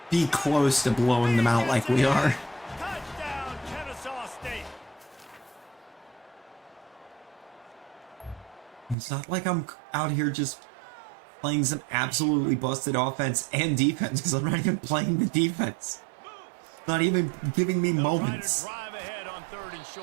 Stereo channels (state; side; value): drops out; left; at 9.0 s